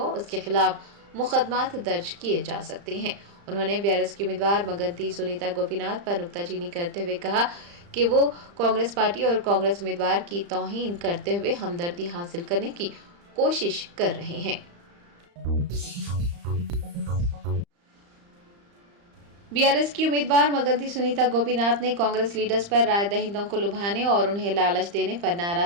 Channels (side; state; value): left; late; 35 ms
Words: उसके खिलाफ मुकदमात दर्ज किए जा सकते हैं। उन्होंने बीआरएस की उम्मीदवार मगंती सुनीता गोपीनाथ पर नुक्ताचीनी करते हुए कहा कि वो कांग्रेस पार्टी और कांग्रेस उम्मीदवार की तौहीन करते हुए हमदर्दी हासिल करने की कोशिश कर रहे हैं। बीआरएस की उम्मीदवार मगंती सुनीता गोपीनाथ ने कांग्रेस लीडर्स पर राय दहिंदों को लुभाने और उन्हें लालच देने पर